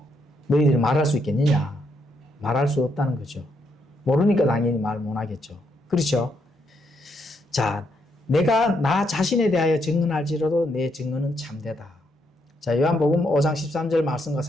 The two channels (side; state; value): both; normal; correlation 0.76